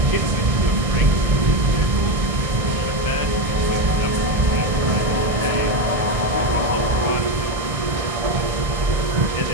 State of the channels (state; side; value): late; left; 1.6 ms